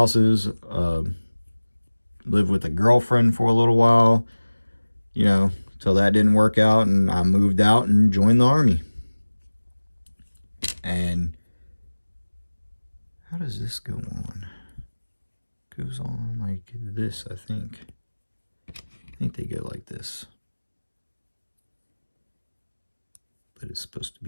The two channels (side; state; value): both; inverted; correlation -1.00